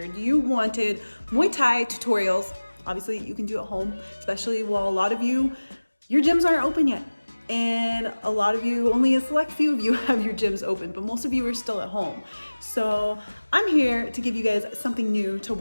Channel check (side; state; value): both; inverted; correlation -1.00